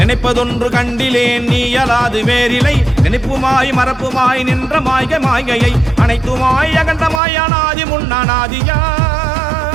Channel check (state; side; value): drops out; left; at 7.2 s